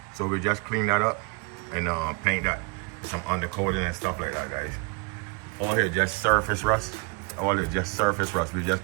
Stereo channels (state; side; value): quieter; left; 30.3 dB